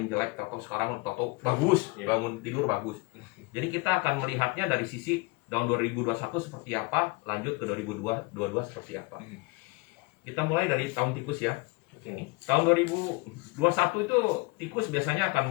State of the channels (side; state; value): right; quieter; 25.6 dB